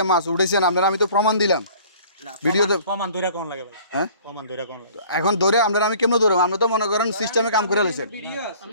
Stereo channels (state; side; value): inverted; both; correlation -0.51